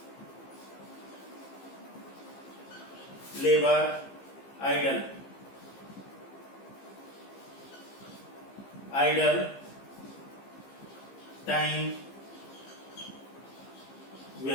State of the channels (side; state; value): right; late; 15 ms